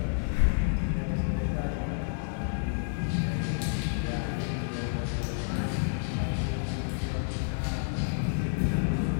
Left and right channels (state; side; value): silent; right; digital silence